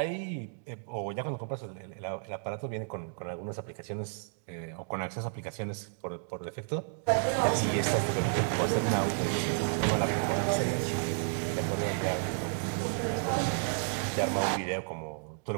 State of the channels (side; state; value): left; silent; digital silence